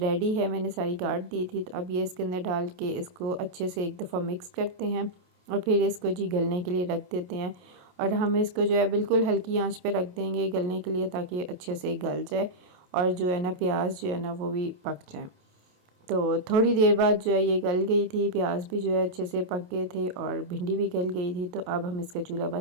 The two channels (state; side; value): late; left; 28 ms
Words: है, मैंने सारी काट दी थी। तो अब ये इसके अंदर डाल के इसको अच्छे से एक दफ़ा मिक्स करते हैं और फिर इसको जी गलने के लिए रख देते हैं। और हम इसको जो है बिल्कुल हल्की आंच पे रख देंगे गलने के लिए, ताकि अच्छे से गल जाए और जो है ना प्याज जो है ना वो भी पक जाए। तो थोड़ी देर बाद जो है ये गल गई थी, प्याज भी जो है अच्छे से पक गए थे और भिंडी भी गल गई थी। तो अब हम इसका चूल्हा